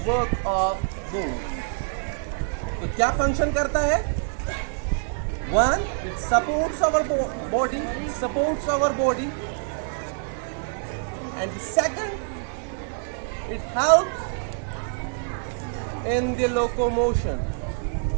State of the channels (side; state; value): left; silent; 61 dB below the other